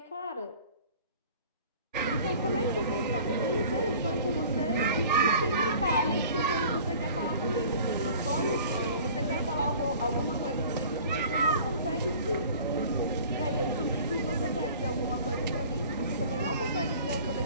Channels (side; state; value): both; inverted; correlation -0.46